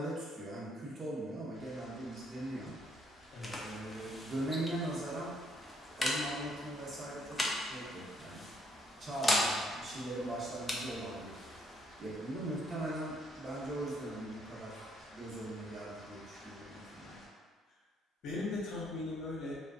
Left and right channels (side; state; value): both; normal; correlation 0.70